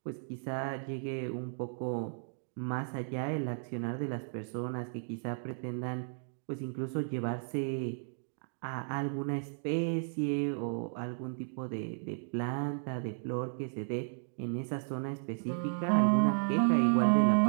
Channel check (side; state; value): left; silent; digital silence